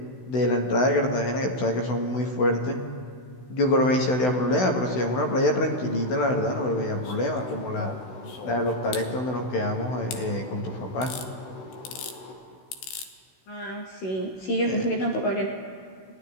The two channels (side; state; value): right; late; 16 ms